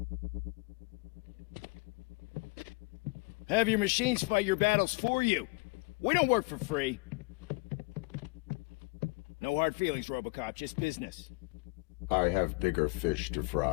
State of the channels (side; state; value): right; quieter; 27.1 dB